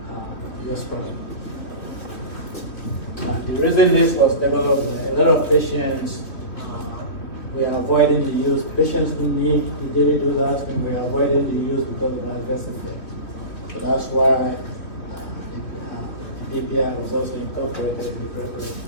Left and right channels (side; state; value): right; late; 3.1 ms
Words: Yospirala. The reason this was developed, a lot of patients we are avoiding the use. Patients who need the daily dose of aspirin, we are avoiding the use because of adverse effects. So that's why the PPI was also incorporated in the preparation.